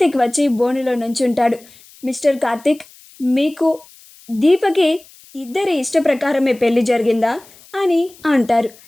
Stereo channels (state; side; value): noise; left; hiss, 25 dB below the sound